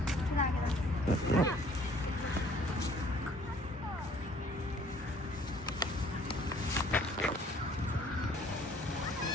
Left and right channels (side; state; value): both; normal; correlation 0.57